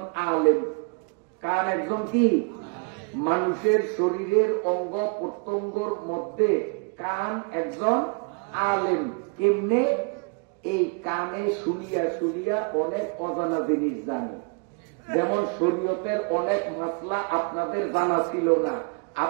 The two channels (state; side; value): quieter; left; 35.1 dB